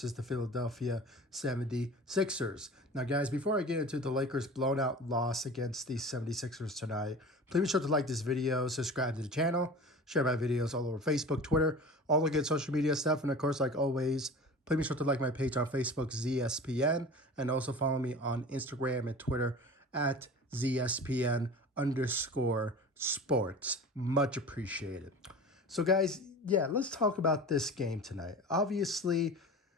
the Philadelphia 76ers. Now, guys, before I get into the Lakers' blown-out loss against the 76ers tonight, please be sure to like this video, subscribe to the channel, share my videos all over Facebook, Twitter, all the good social media stuff. And, of course, like always, please be sure to like my page on Facebook, ZSPN, and also follow me on Instagram and Twitter at ZSPN_sports. Much appreciated. So, guys, yeah, let's talk about this game tonight. Obviously,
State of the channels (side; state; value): both; normal; correlation 0.37